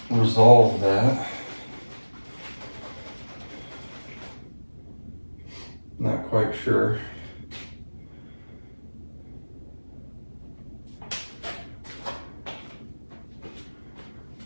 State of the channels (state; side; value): inverted; both; correlation -1.00